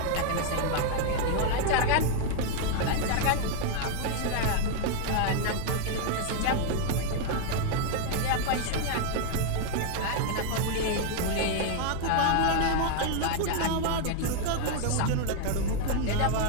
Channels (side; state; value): both; different; correlation 0.00